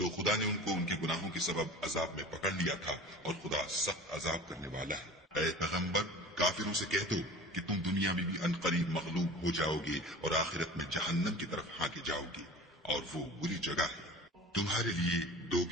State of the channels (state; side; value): normal; both; correlation 0.38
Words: خدا نے ان کو ان کے گناہوں کے سبب عذاب میں پکڑ لیا تھا، اور خدا سخت عذاب کرنے والا ہے۔ اے پیغمبر، کافروں سے کہہ دو کہ تم دنیا میں بھی عنقریب مغلوب ہو جاؤ گے اور آخرت میں جہنم کی طرف ہانکے جاؤ گے، اور وہ بری جگہ ہے۔ تمہارے لیے دو